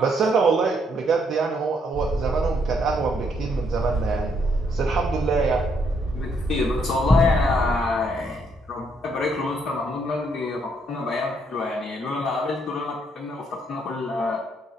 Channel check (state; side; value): normal; both; correlation 0.72